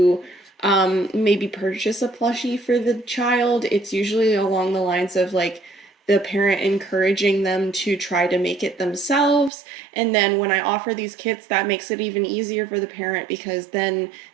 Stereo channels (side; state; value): left; drops out; at 9.5 s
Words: maybe purchase a plushie for the child, it's usually along the lines of like the parent encouraging them to try to make it themselves. And then when I offer these kits, that makes it even easier for the parent because then